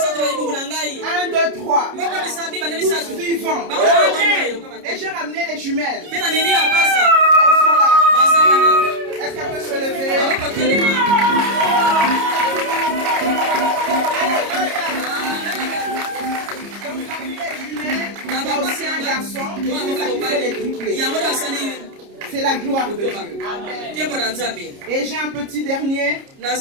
1, 2, 3. Tous vivants. Et j'ai ramené les jumelles. Elles sont là. Est-ce qu'elle peut se lever? Donc parmi les jumelles, il y a aussi un garçon qui fait les triplés. C'est la gloire de Dieu. Amen. Et j'ai un petit dernier.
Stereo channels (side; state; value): left; late; 30 ms